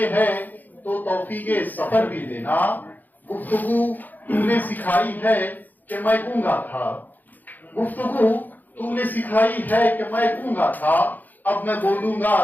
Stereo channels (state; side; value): late; right; 0.084 ms